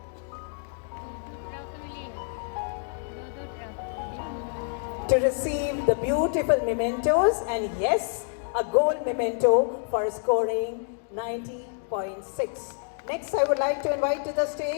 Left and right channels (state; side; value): silent; right; 60 dB below the other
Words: Good afternoon. to receive the beautiful mementos and yes, a gold memento for scoring 90.6. Next, I would like to invite to the